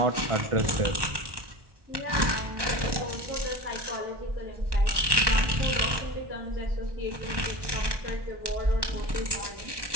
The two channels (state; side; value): late; left; 1.2 ms